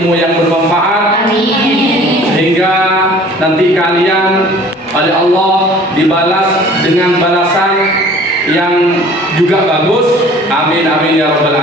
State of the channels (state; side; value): normal; both; correlation 0.49